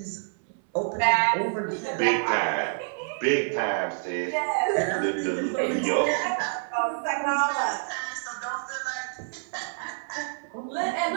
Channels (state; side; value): silent; left; 60 dB below the other